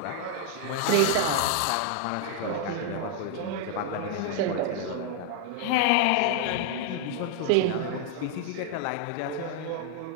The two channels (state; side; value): different; both; correlation 0.00